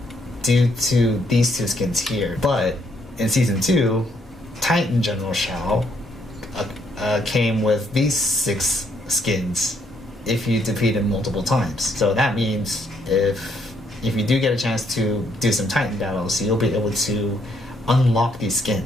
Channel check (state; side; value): normal; both; correlation 0.72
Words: due to these two skins here. But in season 2, Titan General Shao came with these 6 skins if you defeat him multiple times. So that means if you do get a chance to do some Titan battles, you'll be able to unlock these